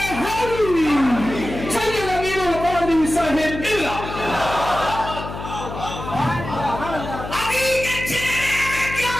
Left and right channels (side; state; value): left; noise; hum, 9 dB below the sound